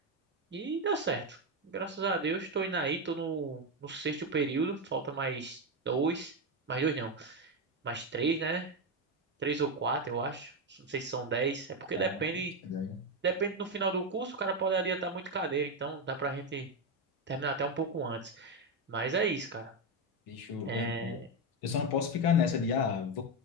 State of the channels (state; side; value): normal; both; correlation 0.09